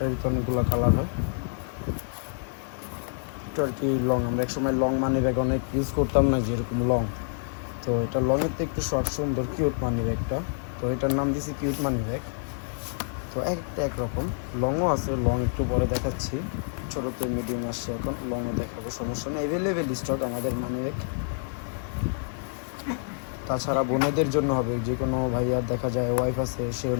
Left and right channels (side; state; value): right; silent; 60 dB below the other